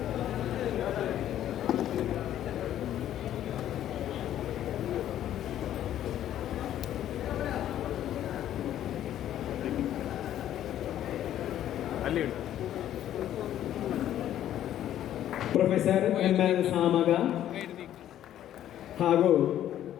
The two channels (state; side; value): quieter; right; 11.7 dB